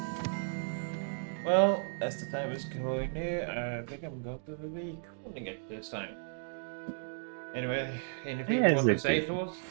Well, as the time is going near, I think I'm going to be calling it this time. Anyway, anything you want to say to us,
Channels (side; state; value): left; silent; digital silence